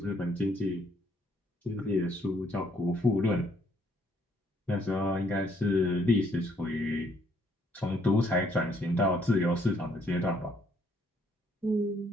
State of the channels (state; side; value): normal; both; correlation 0.68